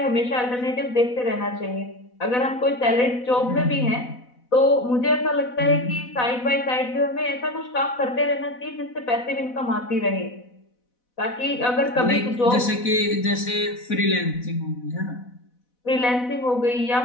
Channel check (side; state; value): right; late; 4.1 ms